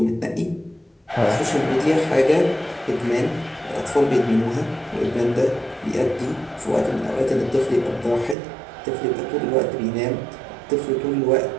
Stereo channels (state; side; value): drops out; left; at 8.3 s